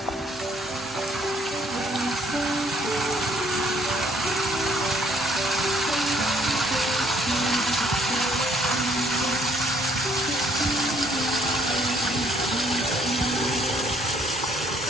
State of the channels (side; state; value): both; normal; correlation 0.64